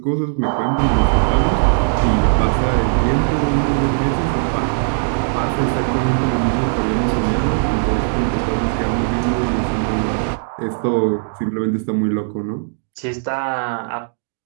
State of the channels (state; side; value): silent; left; digital silence